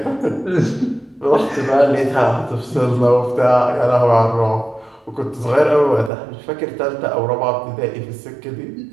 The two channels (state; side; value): drops out; left; at 6.1 s